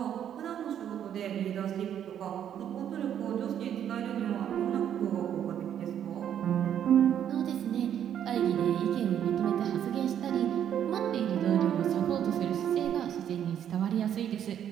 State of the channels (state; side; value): quieter; left; 9.7 dB